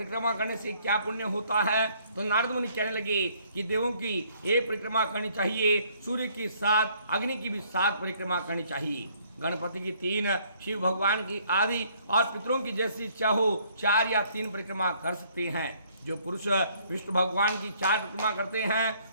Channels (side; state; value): both; inverted; correlation -0.63